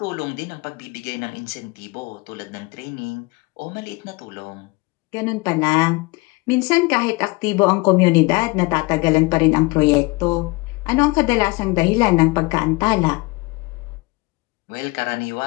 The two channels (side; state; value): right; quieter; 24.8 dB